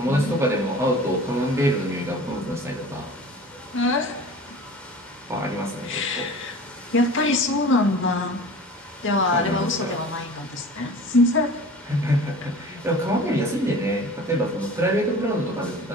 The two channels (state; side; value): normal; both; correlation 0.41